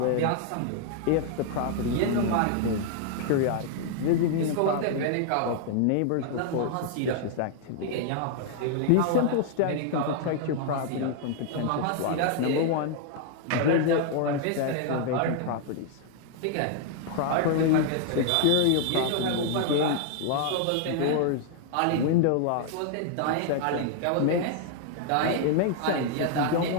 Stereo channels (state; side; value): different; both; correlation 0.00